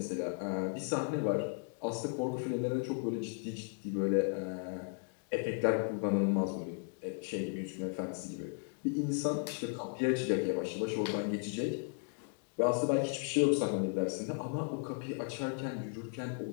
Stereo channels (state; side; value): silent; right; 54 dB below the other